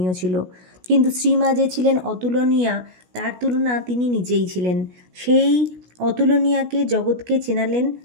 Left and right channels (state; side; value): late; left; 16 ms